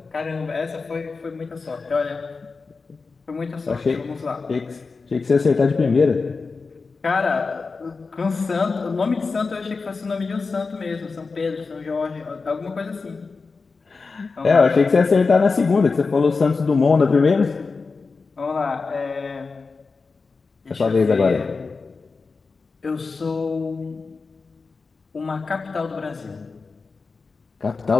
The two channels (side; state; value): right; quieter; 4.4 dB